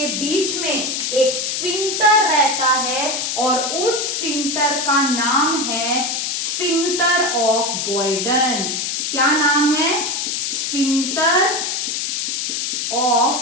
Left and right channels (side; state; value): left; noise; hiss, 1 dB below the sound